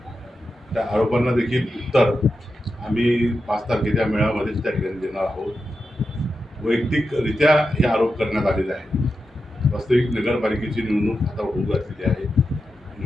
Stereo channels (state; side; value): normal; both; correlation 0.89